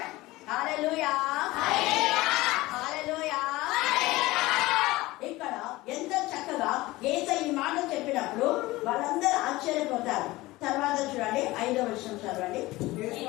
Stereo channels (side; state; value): right; quieter; 19.3 dB